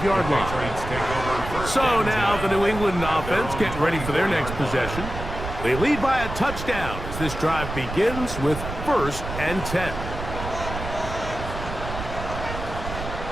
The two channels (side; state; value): right; noise; rumble, 8 dB below the sound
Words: line. So now the New England offense getting ready for their next possession. They lead by a touchdown as this drive begins with 1st and 10.